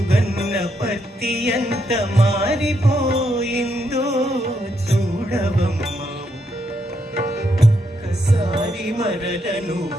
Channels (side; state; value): both; normal; correlation 0.78